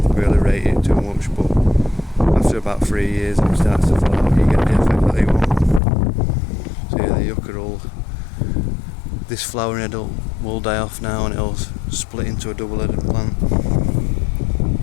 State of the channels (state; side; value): drops out; right; at 5.8 s